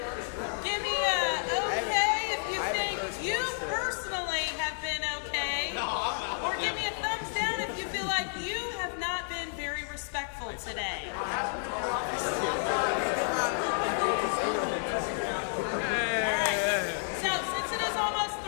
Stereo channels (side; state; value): right; silent; digital silence